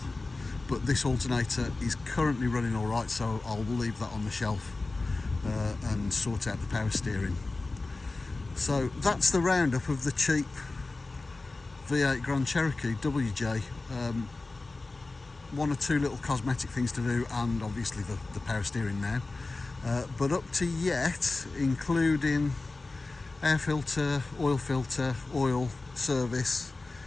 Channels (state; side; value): quieter; right; 3.4 dB